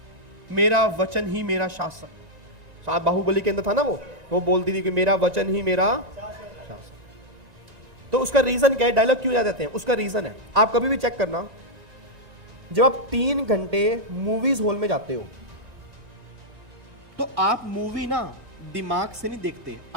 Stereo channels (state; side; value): late; left; 1.9 ms